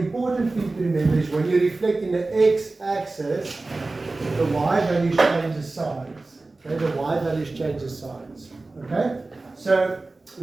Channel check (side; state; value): left; quieter; 3.3 dB